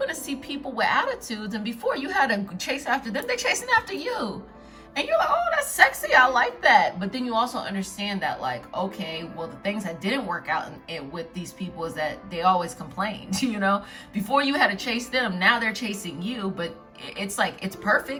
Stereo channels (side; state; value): both; identical; correlation 1.00